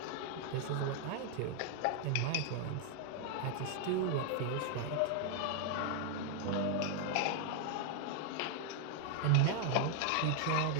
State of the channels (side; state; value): both; different; correlation 0.00